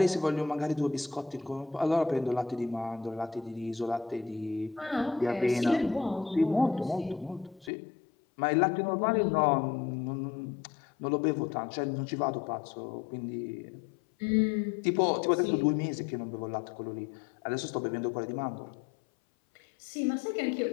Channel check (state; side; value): drops out; right; at 7.7 s